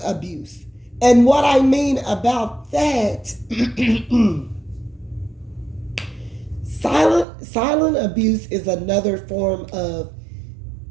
abuse. And what I mean about that, silent abuse is another form of,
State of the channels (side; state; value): left; drops out; at 7.2 s